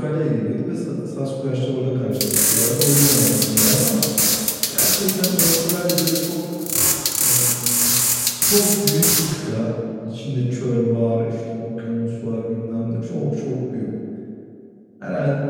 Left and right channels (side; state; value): both; identical; correlation 1.00